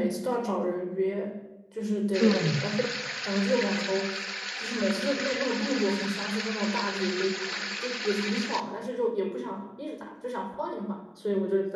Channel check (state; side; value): identical; both; correlation 1.00